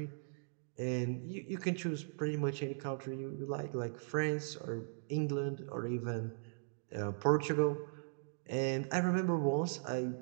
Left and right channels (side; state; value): left; silent; digital silence